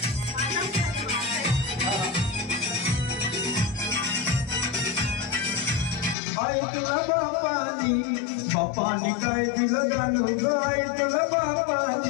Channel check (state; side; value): drops out; right; at 6.2 s